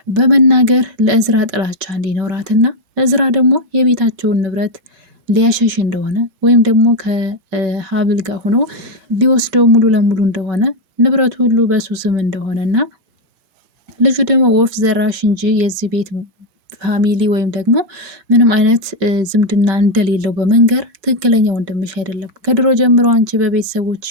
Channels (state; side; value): late; left; 5.2 ms